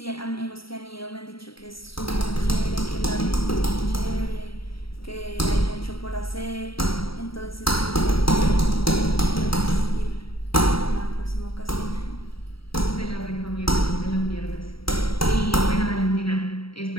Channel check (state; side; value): late; right; 0.75 ms